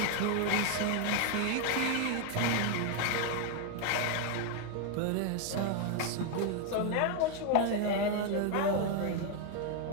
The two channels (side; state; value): both; different; correlation 0.01